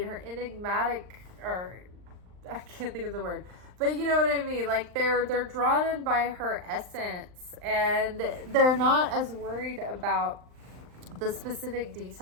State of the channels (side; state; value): left; late; 39 ms